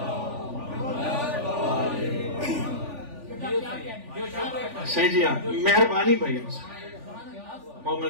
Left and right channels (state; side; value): late; left; 3.4 ms